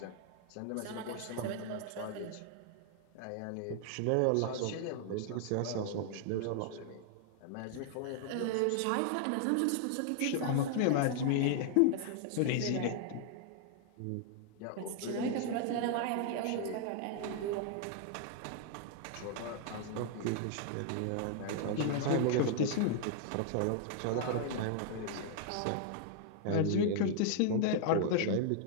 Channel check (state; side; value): different; both; correlation 0.00